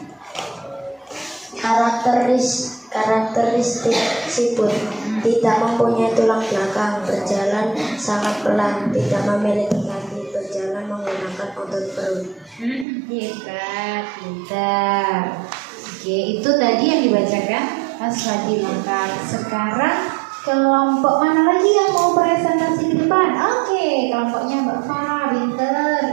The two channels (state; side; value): drops out; left; at 12.9 s